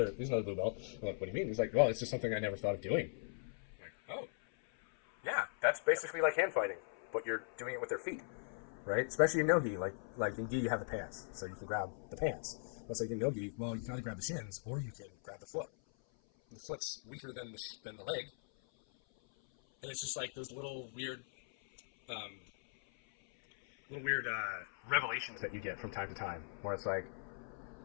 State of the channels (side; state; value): right; silent; 51 dB below the other